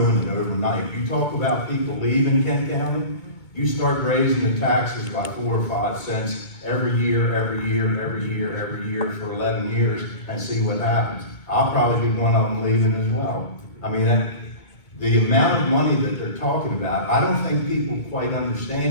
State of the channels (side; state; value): right; late; 2.2 ms